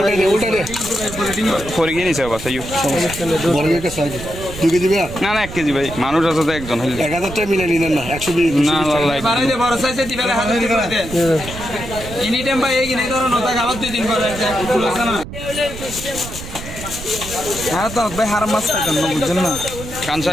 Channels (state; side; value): noise; right; rumble, 11 dB below the sound